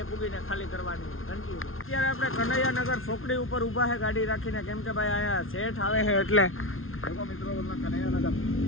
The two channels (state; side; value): late; right; 0.61 ms